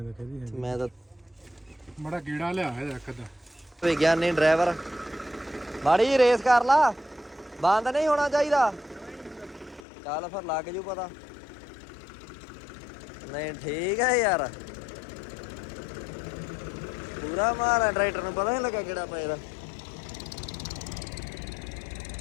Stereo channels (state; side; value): drops out; right; at 9.9 s